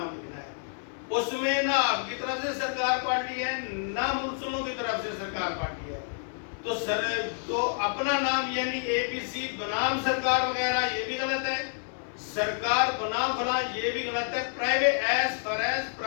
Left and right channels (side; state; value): right; silent; digital silence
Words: لکھنا ہے، اس میں نہ آپ کی طرف سے سرکار پارٹی ہے نہ ملزموں کی طرف سے سرکار پارٹی ہے۔ تو اپنا نام یعنی اے پی سی بنام سرکار وغیرہ یہ بھی غلط ہے، سرکار بنام فلاں یہ بھی غلط ہے۔ Private as far as